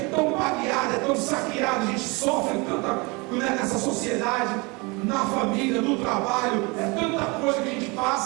baleado, é tão saqueado, a gente sofre tanta nessa sociedade, na família, no trabalho, é tanta coisa que a gente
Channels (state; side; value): quieter; left; 27.4 dB